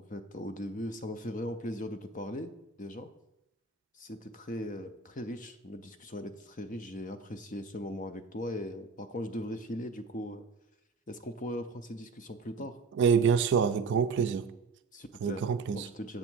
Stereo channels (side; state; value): left; quieter; 4.4 dB